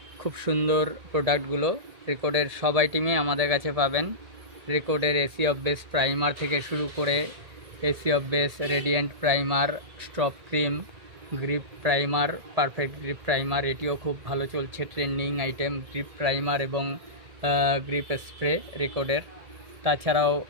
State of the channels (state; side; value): late; left; 1.8 ms